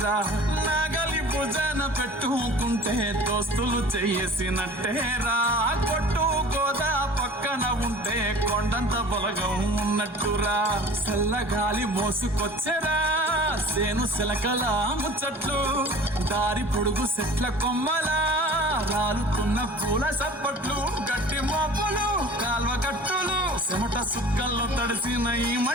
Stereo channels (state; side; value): normal; both; correlation 0.43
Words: నాగలి భుజాన పెట్టుకుంటే దోస్తులు చేసినట్టేరా. కొట్టు గోదా పక్కన ఉంటే కొండంత బలగం ఉన్నట్టురా. చల్లగాలి మోసుకొచ్చెరా సేను శిలకల ముచ్చట్లు, దారి పొడుగు చెట్ల కొమ్మలా రాలుతున్న పూల సప్పట్లు, గట్టి మోపులు, కాల్వ కట్టులు, చెమట సుక్కల్లో తడిసిన ఈ